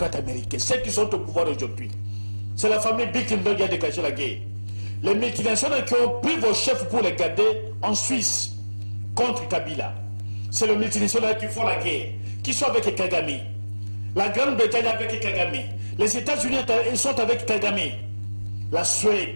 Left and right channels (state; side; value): inverted; both; correlation -1.00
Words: américains. Ceux qui sont au pouvoir aujourd'hui. C'est la famille Bilderberg qui a déclenché la guerre. Les multinationales qui ont pris vos chefs pour les garder en Suisse contre Kabila. C'est les multinationales qui font la guerre, qui sont avec Kagame. La Grande-Bretagne avec Kagame. Les États-Unis sont avec Kagame. La